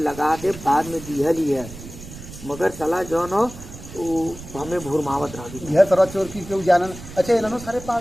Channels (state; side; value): noise; right; rumble, 14 dB below the sound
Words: लगा दे, बाद में दिहल ही है, मगर चला जो न हमें भूरमावत रह गई। यह तरह चोर की क्यों जानन। अच्छा इन्होंने सारे